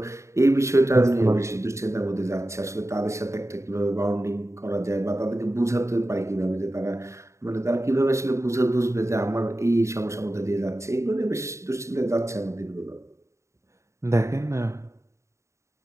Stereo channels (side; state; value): left; late; 0.14 ms